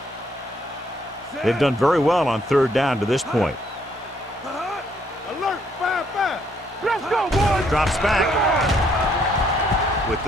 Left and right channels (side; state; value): both; normal; correlation 0.69